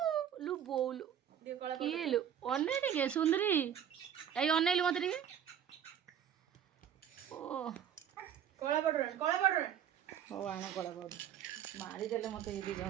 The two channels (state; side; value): quieter; left; 9.3 dB